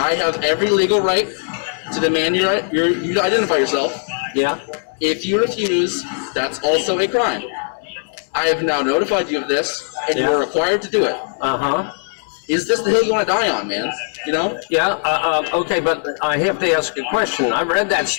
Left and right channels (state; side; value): silent; right; digital silence